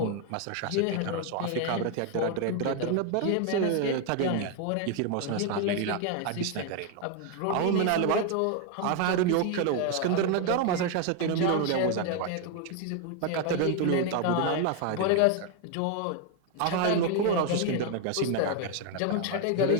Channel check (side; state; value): both; different; correlation 0.01